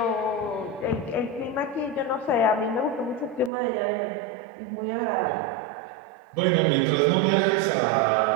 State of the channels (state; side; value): drops out; left; at 3.5 s